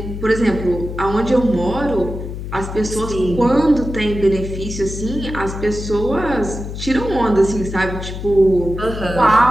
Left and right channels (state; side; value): noise; left; hum, 8 dB below the sound